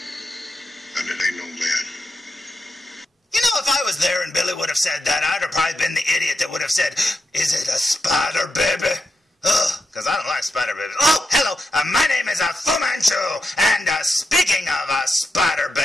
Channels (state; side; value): normal; both; correlation 0.87